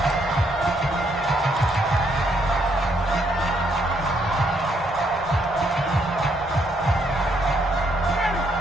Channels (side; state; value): both; normal; correlation 0.73